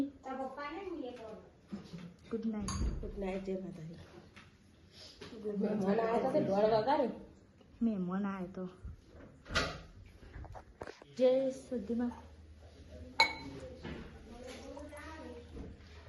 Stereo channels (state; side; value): identical; both; correlation 1.00